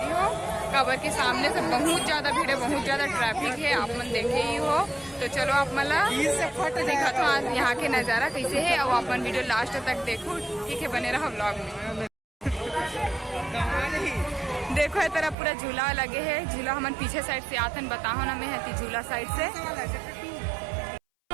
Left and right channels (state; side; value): drops out; left; at 15.4 s